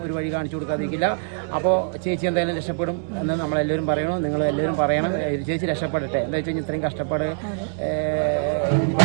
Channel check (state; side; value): silent; left; digital silence